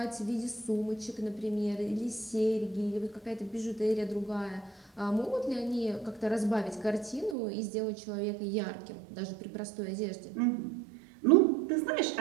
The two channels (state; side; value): drops out; left; at 7.4 s